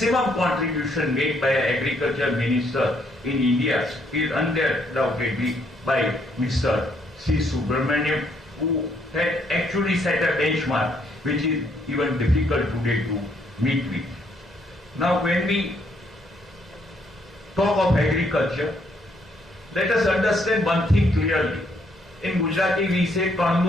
contribution made by an agriculture minister in India is undoubtedly by Mr. C. Subramaniam, who had actually set a benchmark which is even difficult today to meet with. Now when we talk of agriculture, let us understand one thing clearly. In Gujarati we say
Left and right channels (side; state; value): both; normal; correlation 0.70